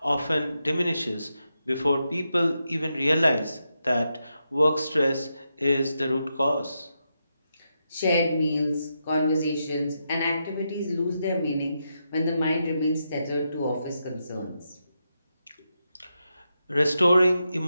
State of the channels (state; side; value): inverted; both; correlation -0.85